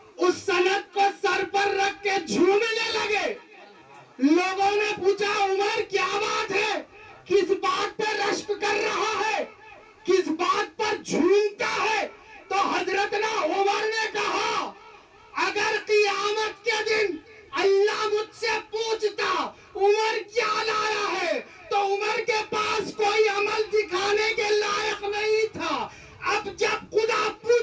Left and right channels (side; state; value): both; identical; correlation 1.00